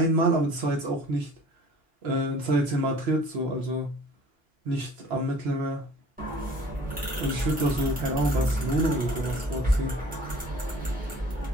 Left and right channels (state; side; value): normal; both; correlation 0.49